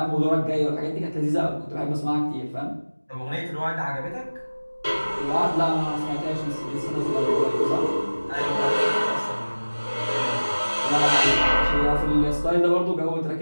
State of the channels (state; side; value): inverted; both; correlation -1.00